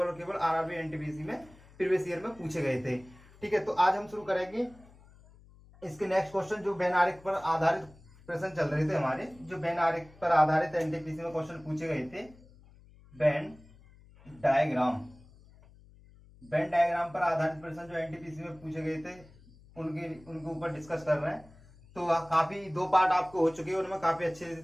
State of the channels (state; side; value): noise; left; hum, 24 dB below the sound